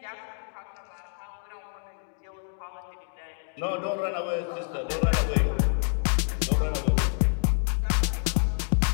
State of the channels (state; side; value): silent; right; 60 dB below the other